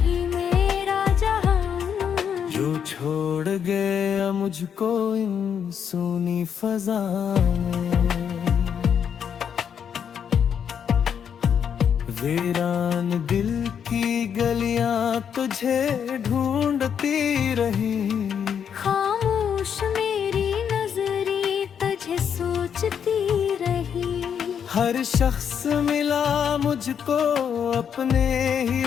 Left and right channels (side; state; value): right; quieter; 7.9 dB